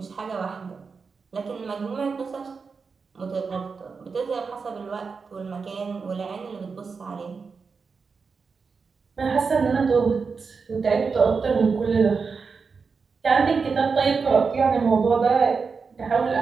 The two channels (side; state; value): left; quieter; 5.1 dB